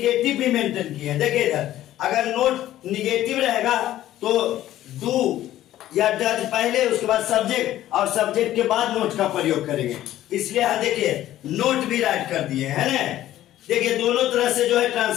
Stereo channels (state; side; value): quieter; right; 13.5 dB